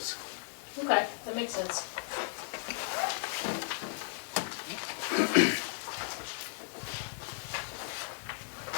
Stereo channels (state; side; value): silent; right; digital silence